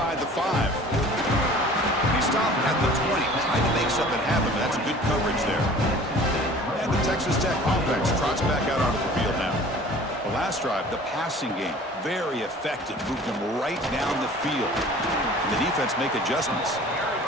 the 5. He stopped at the 20, trying to make something happen, but that's good coverage there. And the Texas Tech offense trots back out onto the field now. The last drive, the passing game, very effective. Moved them right down the field. And the defense make adjustments.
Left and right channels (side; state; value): both; normal; correlation 0.46